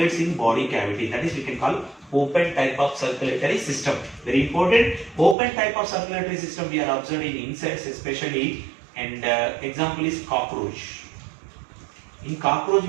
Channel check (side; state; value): left; drops out; at 5.4 s